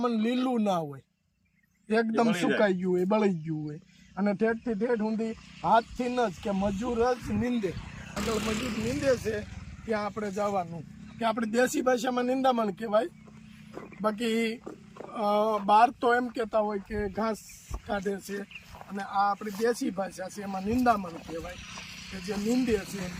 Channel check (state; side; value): identical; both; correlation 1.00